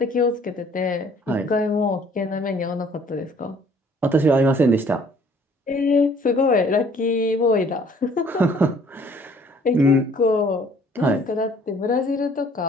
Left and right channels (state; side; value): normal; both; correlation 0.57